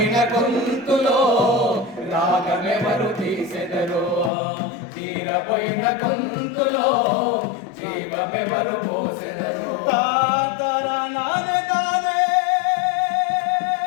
గొంతులో రాగమెవరు తీసెదరు తీరబోయిన గొంతులో జీవమెవరు పోసెదరు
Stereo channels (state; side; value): drops out; right; at 4.3 s